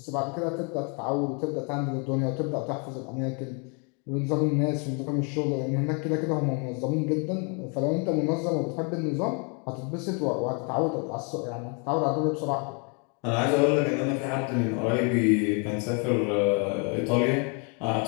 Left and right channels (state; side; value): quieter; right; 35.8 dB